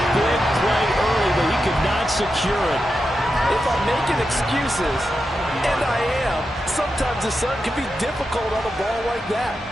big play early, but he could not secure it. If I'm making excuses, and I am, sometimes the sun can be difficult on a ball like that.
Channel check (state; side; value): normal; both; correlation 0.88